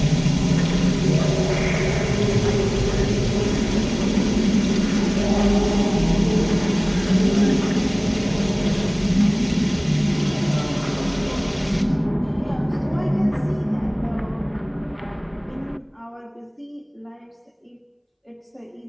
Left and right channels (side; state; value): both; identical; correlation 1.00